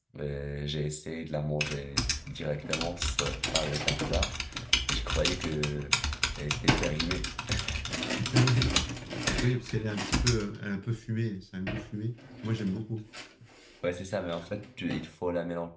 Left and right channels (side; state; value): both; identical; correlation 1.00